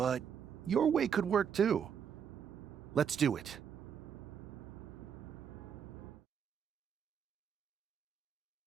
your way could work too. Let's do it.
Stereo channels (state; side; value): quieter; left; 7.8 dB